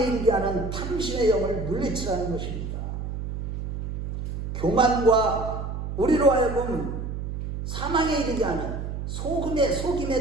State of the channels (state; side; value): noise; right; hum, 5 dB below the sound